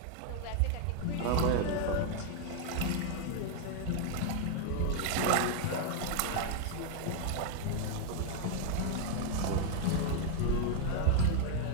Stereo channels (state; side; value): different; both; correlation 0.00